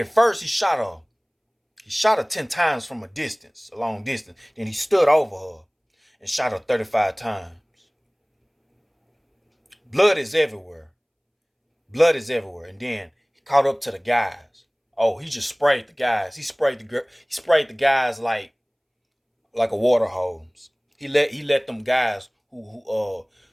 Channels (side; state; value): both; identical; correlation 1.00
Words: first he shot her. He shot her 10 times from a long distance. Then he stood over her and shot her 35 times. Blood is everywhere. Blood is everywhere. And then he caught up to the guys. Oh, he just sprayed the guys. He sprayed the guys like a water hose. He let them guys who